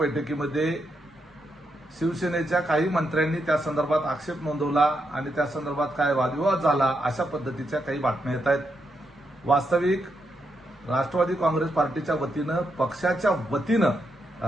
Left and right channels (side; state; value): both; normal; correlation 0.82